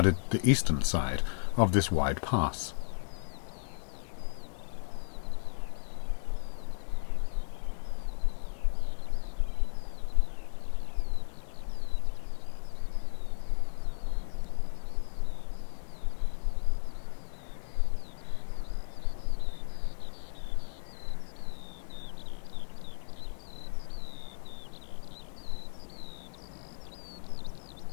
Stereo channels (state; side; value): silent; right; digital silence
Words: the eastern side of this wide pass.